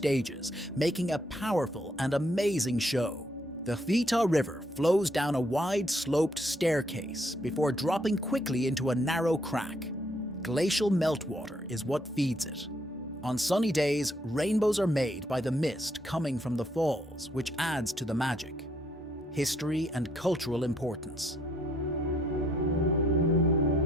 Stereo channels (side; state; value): both; normal; correlation 0.70